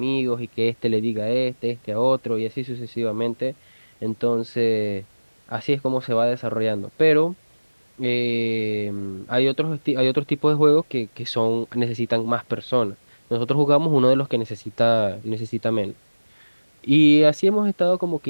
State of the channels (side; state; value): both; inverted; correlation -1.00